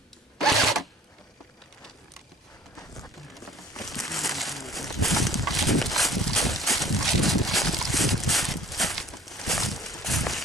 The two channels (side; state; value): both; normal; correlation 0.55